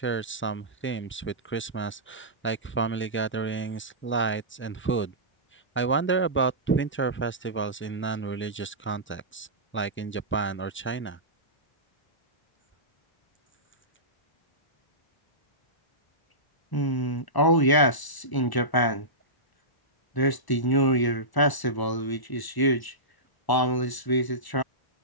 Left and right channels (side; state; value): right; late; 1.0 ms